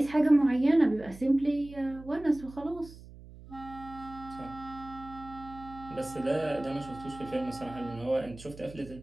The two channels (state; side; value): noise; right; hum, 18 dB below the sound